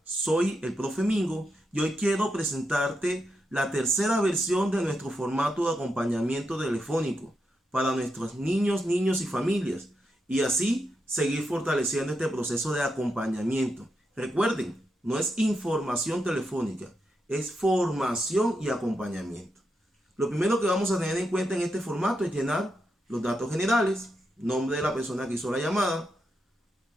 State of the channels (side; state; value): both; normal; correlation 0.84